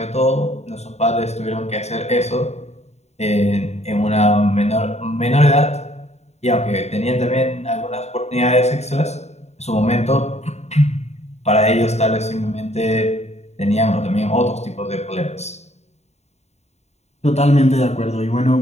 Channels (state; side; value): late; right; 0.32 ms